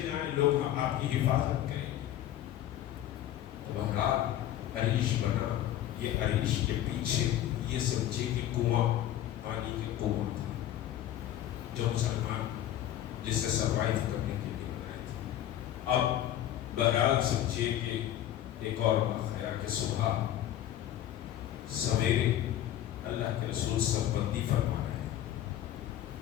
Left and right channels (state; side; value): quieter; right; 12.2 dB